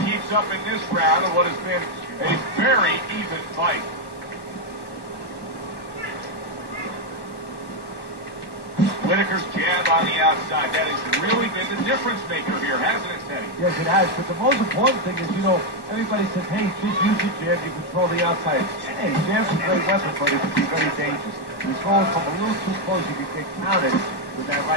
keeps up in this round of what has been a very even fight. Whitaker's jab on the outside. That has really been the difference maker here, hasn't it, Teddy? Yes, it has. But the most important thing is, you know, everybody says, hey, just use your jab, you control the outside. Hey, jab's a great weapon, but it can be very dangerous. He's going from a little too close, you can get counted with that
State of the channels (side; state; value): right; late; 1.1 ms